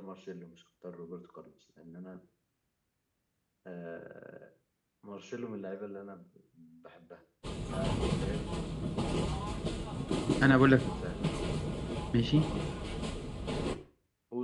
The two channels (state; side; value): identical; both; correlation 1.00